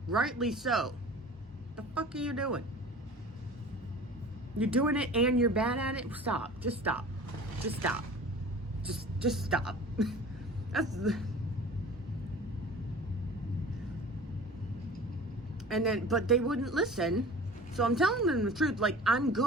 Rightly so. The fuck are you doing? You're doing it and you're bad at it? Stop. Just stop. Just stop. Just stop. But they wouldn't listen. So I'm telling them the truth. Like, I'm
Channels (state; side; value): normal; both; correlation 0.41